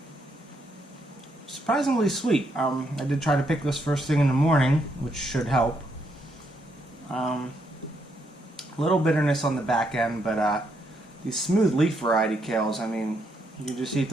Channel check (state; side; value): normal; both; correlation 0.76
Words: Surprisingly sweet. I did try to pick this first thing in the morning, which should help. A little bitterness on the back end, but these smooth leaf variety kales, I mean, you can just eat